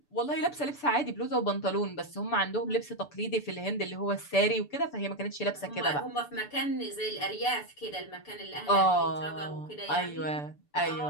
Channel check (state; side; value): late; right; 6.9 ms